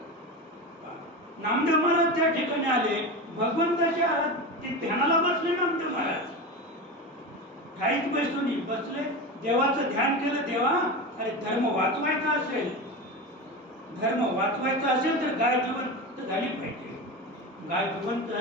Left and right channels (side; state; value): both; normal; correlation 0.23